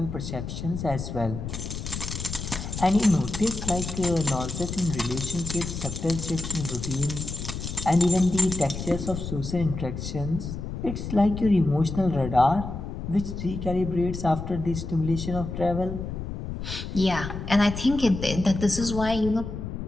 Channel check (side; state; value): left; noise; rumble, 6 dB below the sound